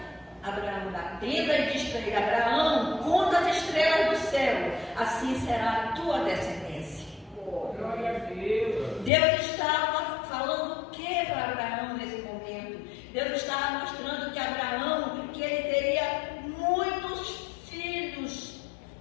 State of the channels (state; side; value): drops out; right; at 9.1 s